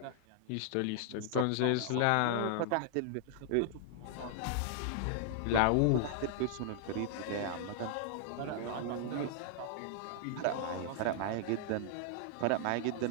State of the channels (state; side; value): different; both; correlation -0.01